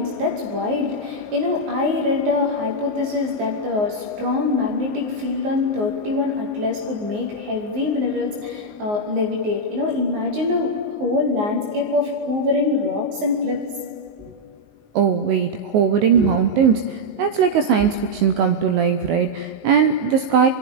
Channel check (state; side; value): late; left; 19 ms